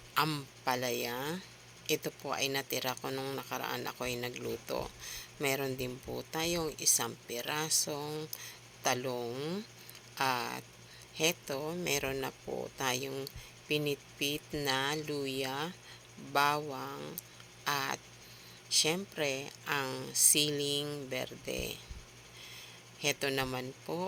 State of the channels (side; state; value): both; identical; correlation 1.00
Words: ampalaya. Ito po ay natira ko nung nakaraan ako ay nagluto. Meron din po tayong isang pirasong talong. At heto, meron na po tayong pinitpit na luya, bawang, at syempre ang siling berde. Heto naman